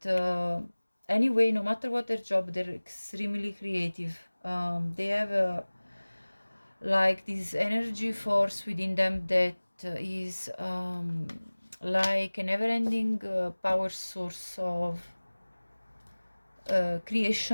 anyway, no matter what their job, they're extremely creative. They have like this energy force within them that is like a never-ending power source of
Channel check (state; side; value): inverted; both; correlation -1.00